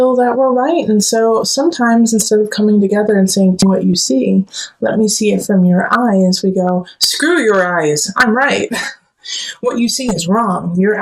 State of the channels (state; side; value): identical; both; correlation 1.00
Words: that we're right. And so sometimes instead of coming together and saying, "Do what you see, let me see it from your eyes," we go, "Screw your eyes, I'm right. What you see is wrong. You're